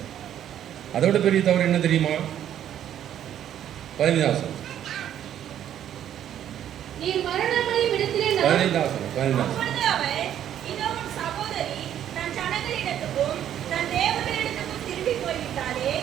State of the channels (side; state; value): left; quieter; 10.5 dB